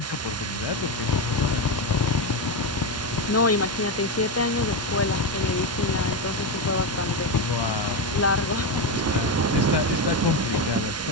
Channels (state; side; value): normal; both; correlation 0.11